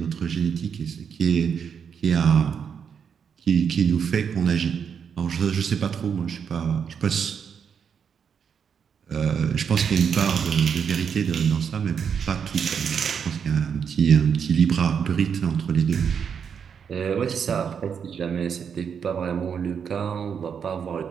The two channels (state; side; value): quieter; left; 7.1 dB